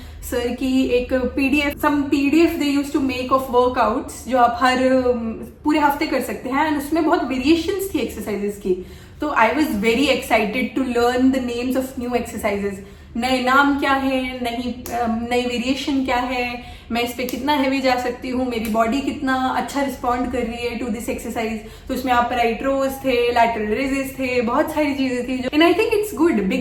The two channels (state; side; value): identical; both; correlation 1.00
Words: सर की एक PDF they use to make of workouts, जो आप हर पूरे हफ्ते कर सकते हैं। एंड उसमें बहुत वेरिएशंस थी एक्सरसाइजेस की। तो I was very excited to learn the names of new exercises, नए नाम क्या है, नई वेरिएशन क्या है, मैं इस पे कितना हैवी जा सकती हूँ, मेरी बॉडी कितना अच्छा रिस्पॉन्ड कर रही है टू दिस एक्सरसाइज। तो उसमें आप राइट रोज थे, लैटरल रेजेस थे, बहुत सारी चीजें थी। And I think it's good,